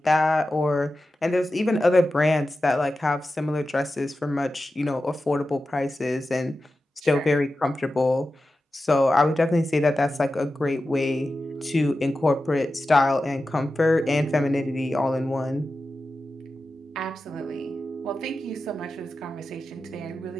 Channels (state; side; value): normal; both; correlation 0.92